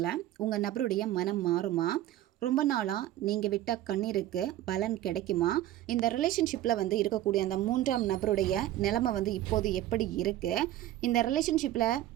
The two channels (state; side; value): quieter; left; 13.9 dB